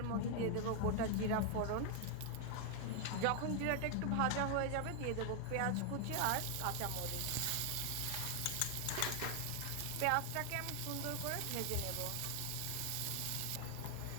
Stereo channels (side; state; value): both; different; correlation 0.00